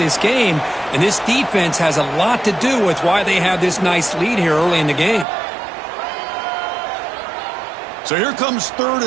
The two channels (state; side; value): drops out; left; at 5.2 s